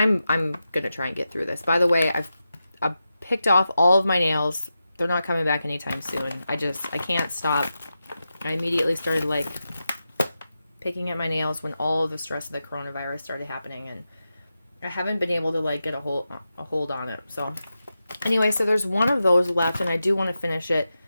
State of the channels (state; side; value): inverted; both; correlation -0.90